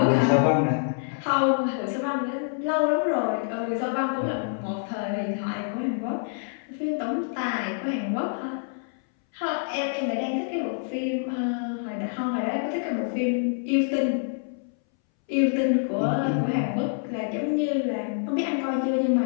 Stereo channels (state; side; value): silent; right; 61 dB below the other